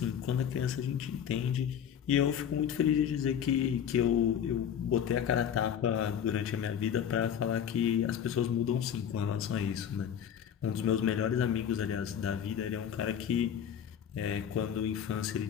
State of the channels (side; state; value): right; quieter; 8.8 dB